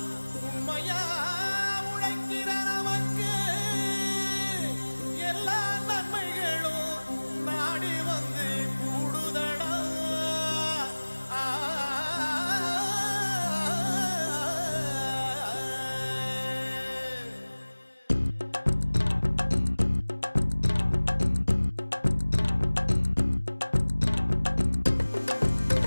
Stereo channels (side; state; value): both; inverted; correlation -1.00